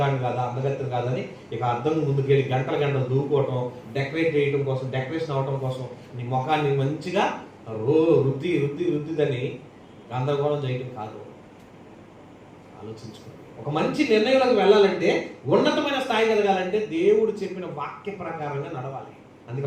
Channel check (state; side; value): identical; both; correlation 1.00